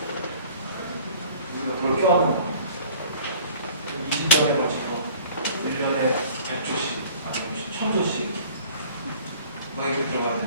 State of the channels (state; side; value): inverted; both; correlation -0.50